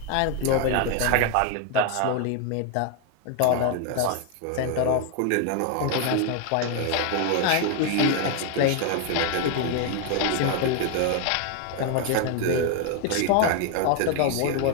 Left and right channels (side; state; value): both; different; correlation 0.01